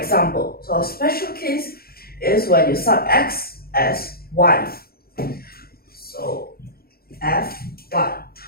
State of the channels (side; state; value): right; late; 0.44 ms